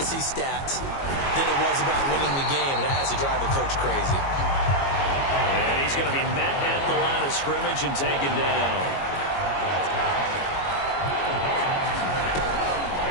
stats than it was about winning the game, and that has to drive a coach crazy. And he's going to be met at the line of scrimmage and taken down.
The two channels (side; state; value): right; late; 22 ms